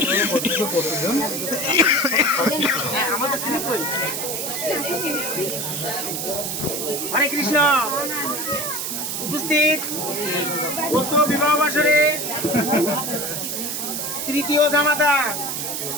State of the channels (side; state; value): right; noise; hiss, 3 dB below the sound